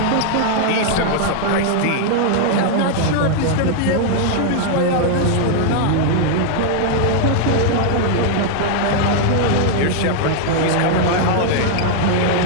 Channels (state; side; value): different; both; correlation 0.00